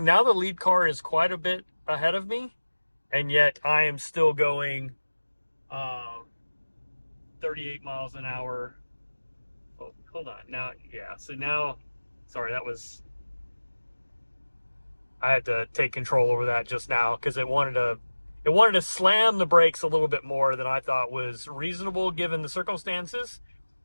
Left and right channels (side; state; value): both; inverted; correlation -1.00